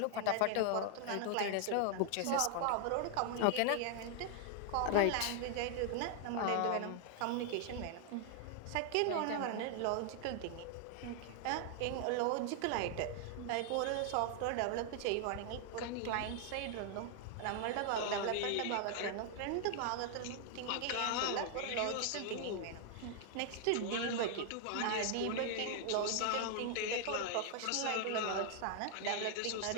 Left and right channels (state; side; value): different; both; correlation 0.00